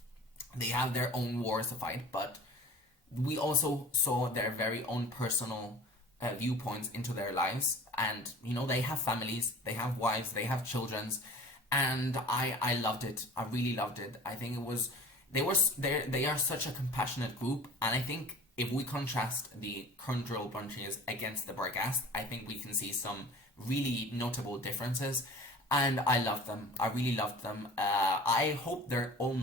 they have their own wars to fight, but we also saw their very own personal viewpoints into their lives, and you know, they have families, they have wives, they have children, and I loved it. I really loved it. I think they are such a compassionate group, and I think if we contrast the Kundril Bunches against the Barghast, I think we can see some really notable differences, and I loved them. I really loved them. I hope they're all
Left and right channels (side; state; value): both; normal; correlation 0.42